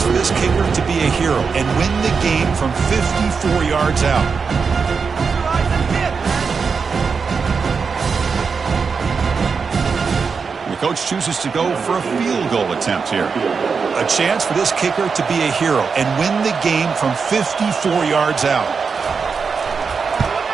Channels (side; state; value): left; quieter; 5.4 dB